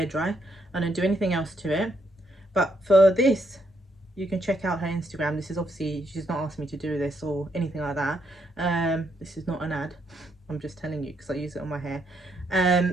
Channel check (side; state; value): both; normal; correlation 0.76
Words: dry. I don't do anything else to it. But for this, you can check out her Instagram. This is obviously, she's not asked me to do this or anything like that. This is not an ad. I'm just telling you because I use it on my hair.